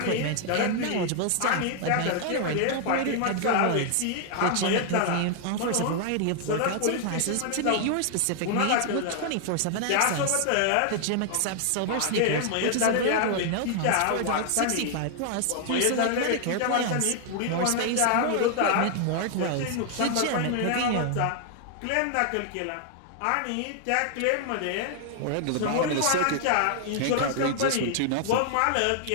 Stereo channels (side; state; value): both; different; correlation 0.00